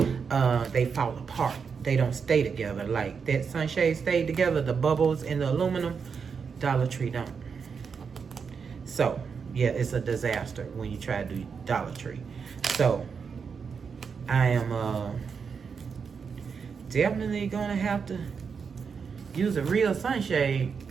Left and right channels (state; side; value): quieter; left; 6.0 dB